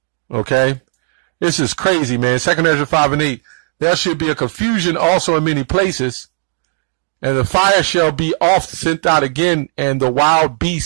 Okay? This is crazy, man. 2 Ezra 5:8. There should be a confusion also in many places, and the fire shall be oft sent out again, and the wild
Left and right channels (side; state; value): left; silent; digital silence